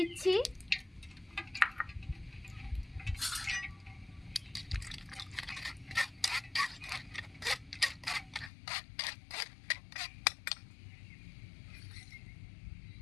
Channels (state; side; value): drops out; right; at 8.5 s